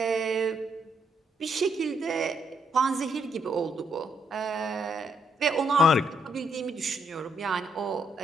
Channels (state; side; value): normal; both; correlation 0.75